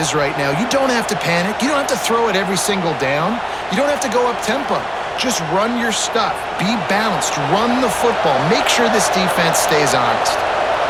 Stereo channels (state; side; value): identical; both; correlation 1.00